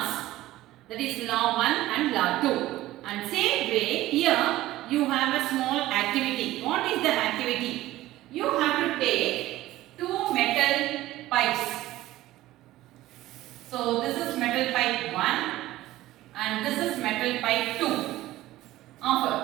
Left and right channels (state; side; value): quieter; left; 16.0 dB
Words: that is law 1 and law 2. And same way here you have a small activity. What is the activity? You have to take two metal pipes. So this is metal pipe 1 and this is metal pipe 2